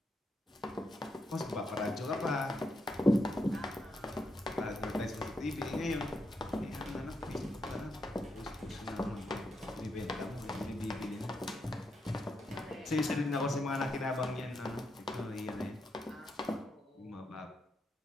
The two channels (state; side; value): normal; both; correlation 0.82